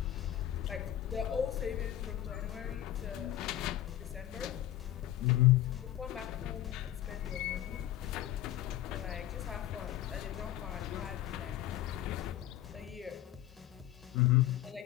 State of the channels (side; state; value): right; quieter; 13.3 dB